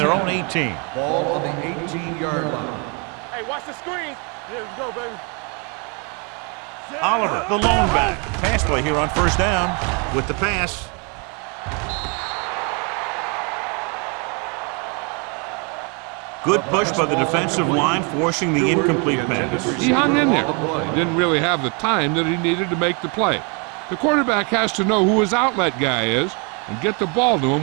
own 18. Ball on the 18-yard line. Hey, watch the screen. Here we go, baby. Oliver, the lone back. Pass play here on first down with the pass. Good push by the defensive line, forcing the incomplete pass. He hung in there. He didn't really have the time that he needed to make the play. The quarterback has to know who his outlet guy is and get the ball to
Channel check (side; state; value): left; quieter; 34.1 dB